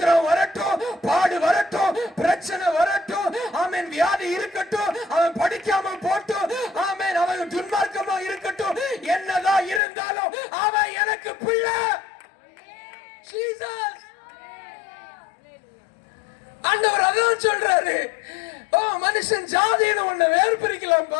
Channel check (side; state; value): right; drops out; at 9.8 s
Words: வரட்டும், பாடு வரட்டும், பிரச்சனை வரட்டும், ஆமென், வியாதி இருக்கட்டும், அவன் படிக்காம போட்டும், ஆமென், அவன் துன்மார்க்கமா இருக்கட்டும், என்னதான் இருந்தாலும் அவன் எனக்கு பிள்ளை. ஜீசஸ். ஆண்டவர் அதான் சொல்றாரு. மனுஷன் ஜாதின்னு ஒண்ணு வேறு